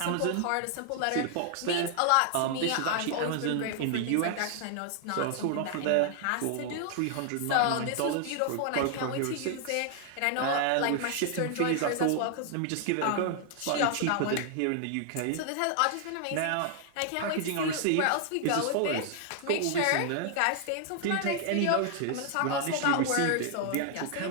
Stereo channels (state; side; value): different; both; correlation 0.00